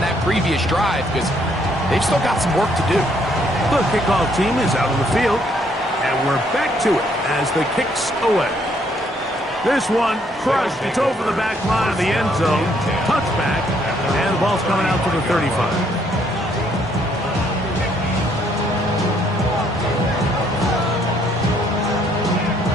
previous drive because they've still got some work to do. The kickoff team is out on the field, and we're back to it as the kick's away. This one crushed. It's over the back line of the end zone. Touchback, and the ball's coming out to the 35.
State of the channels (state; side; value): normal; both; correlation 0.68